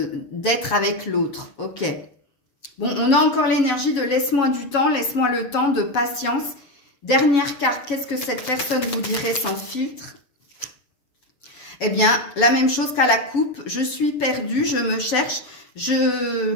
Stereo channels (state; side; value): late; right; 7.1 ms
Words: d'être avec l'autre. Ok. Bon, on a encore l'énergie de laisse-moi du temps, laisse-moi le temps, de patience. Dernière carte, qu'est-ce que cette personne vous dirait sans filtre? Eh bien, la même chose qu'à la coupe, je suis perdue, je me cherche, je